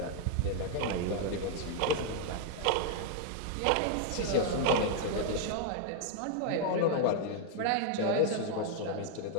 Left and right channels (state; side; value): different; both; correlation 0.00